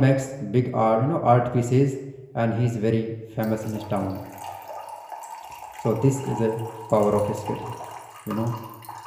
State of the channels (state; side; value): identical; both; correlation 1.00